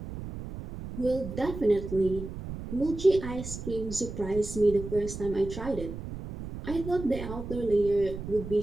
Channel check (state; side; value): noise; right; rumble, 9 dB below the sound